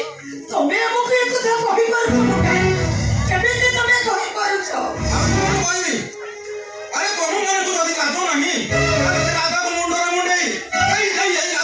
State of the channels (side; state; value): both; identical; correlation 1.00